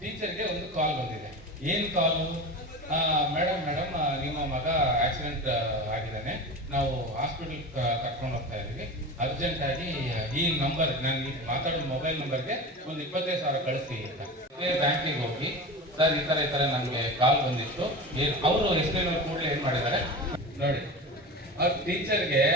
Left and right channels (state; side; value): normal; both; correlation 0.29